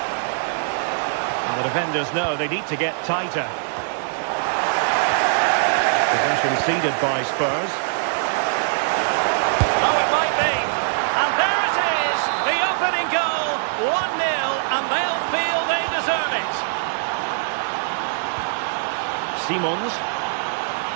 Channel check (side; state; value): left; silent; digital silence